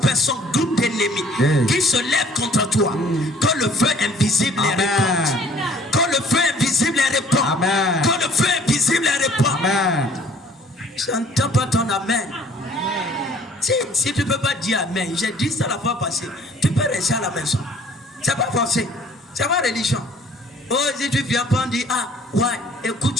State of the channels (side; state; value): both; normal; correlation 0.55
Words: groupes d'ennemis Yeah. qui se lèvent contre toi. Que le feu invisible les Amen. répande. Que le feu invisible les répande. Amen. Que le feu invisible les répande. Amen. Je n'entends pas ton amen. Si tu ne peux pas dire amen, j'ai dit ça la fois passée, tu peux rester à la maison. C'est pas forcé. C'est pas religion. Oh, si tu viens pas dire, ah, ouais,